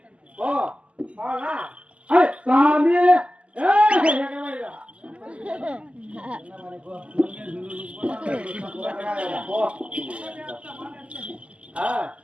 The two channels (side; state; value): left; late; 0.058 ms